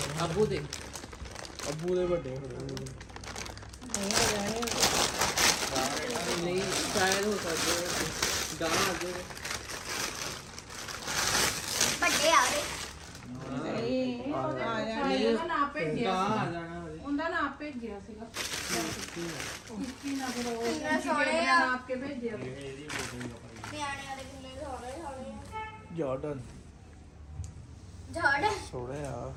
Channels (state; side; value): identical; both; correlation 1.00